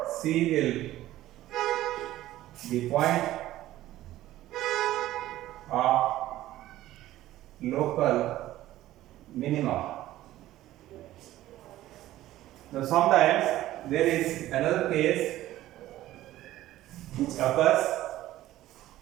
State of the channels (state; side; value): quieter; left; 14.8 dB